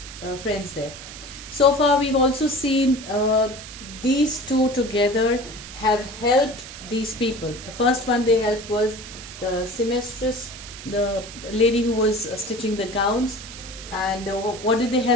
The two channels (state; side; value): noise; right; hiss, 13 dB below the sound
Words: friends there. So far we've also seen these two together have helped these people. The first one they helped was the seamstress, the lady who was stitching the gowns. And what did they